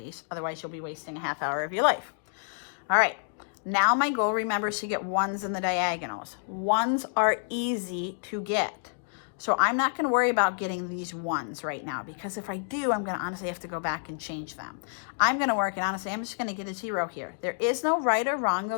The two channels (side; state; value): right; silent; digital silence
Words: Otherwise, you'll be wasting a half hour of your life. All right. Now my goal, remember, is to get 1's in the diagonals. 1's are easy to get. So I'm not going to worry about getting these 1's right now, because if I do, I'm going to honestly have to go back and change them. I'm going to work, and honestly, I'm just going to get a 0 here. There is no right or wrong, though.